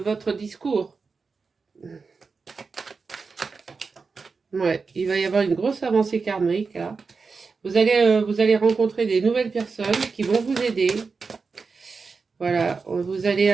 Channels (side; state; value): left; quieter; 4.7 dB